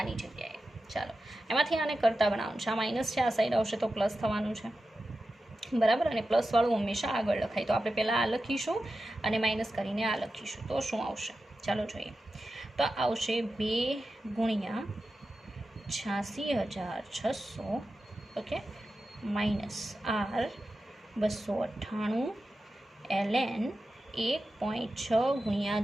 જગ્યાએ. ચાલો એમાંથી આને કરતા બનાવવાનું છે, આ માઇનસ છે, આ સાઈડ આવશે તો પ્લસ થવાનું છે, બરાબર. અને પ્લસવાળું હંમેશા આગળ લખાય, તો આપણે પહેલાં આ લખીશું અને માઇનસ કરીને આ લખીશું, તો શું આવશે ચાલો જોઈએ. તો આવશે 2 ગુણ્યા 86,600 ઓકે -R 298 ln 1.6 ગુણ્યા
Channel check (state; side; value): normal; both; correlation 0.92